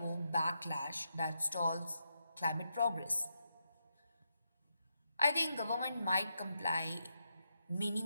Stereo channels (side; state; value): both; inverted; correlation -0.83